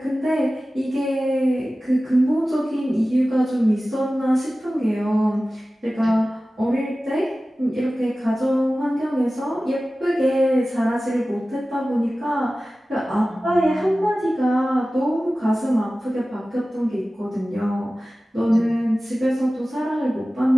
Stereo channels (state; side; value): normal; both; correlation 0.96